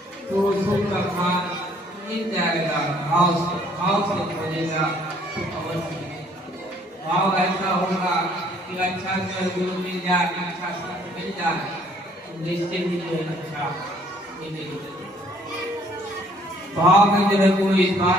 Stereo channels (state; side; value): normal; both; correlation 0.62